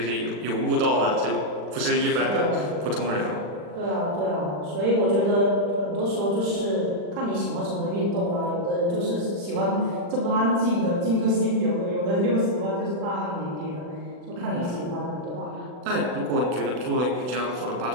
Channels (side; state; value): left; late; 40 ms